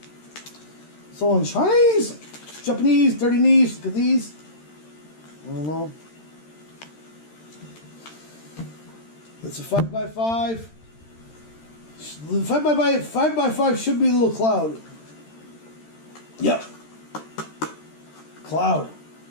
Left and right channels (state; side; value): late; right; 13 ms